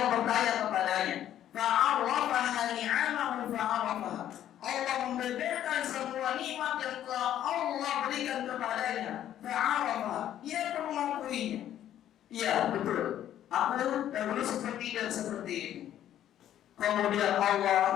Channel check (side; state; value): right; quieter; 11.4 dB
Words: bertanya kepadanya, fa'arrafaha ni'amahu fa'arrafaha, Allah membeberkan semua nikmat yang telah Allah berikan kepadanya. Fa'arrafaha, ia pun mengakuinya. Iya, betul, aku dahulu seperti dan seperti ini. Kemudian